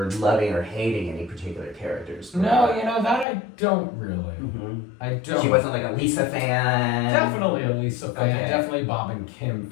loving or hating any particular characters? No, that I don't really. I don't. She wasn't like a Lisa fan? Definitely a Lisa fan, Okay. Definitely Bob and Kim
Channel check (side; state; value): right; drops out; at 3.2 s